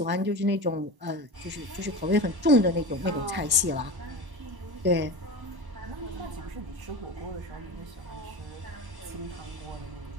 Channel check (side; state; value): left; late; 1.1 ms